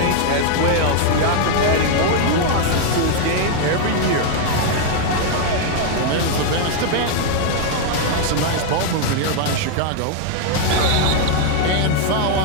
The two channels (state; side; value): different; both; correlation 0.00